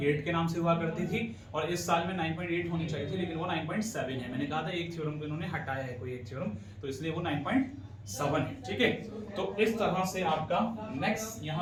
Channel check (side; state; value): both; identical; correlation 1.00